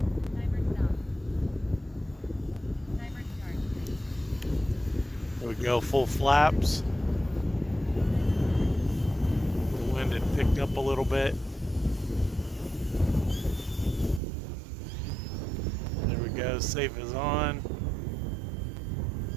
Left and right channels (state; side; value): drops out; left; at 14.2 s